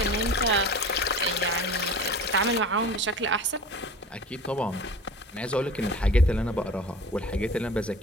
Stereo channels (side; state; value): both; normal; correlation 0.39